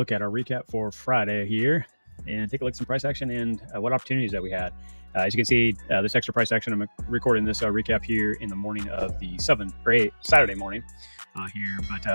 at our recap for Friday here and take a look at some price action and what opportunities that we had. As you can see, this extra price action, I'm recording this recap here in the morning of the 7th or 8th, Saturday morning here. But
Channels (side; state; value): both; inverted; correlation -1.00